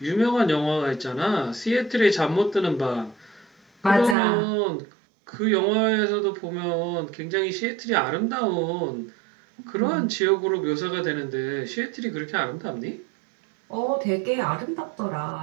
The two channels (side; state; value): left; drops out; at 4.2 s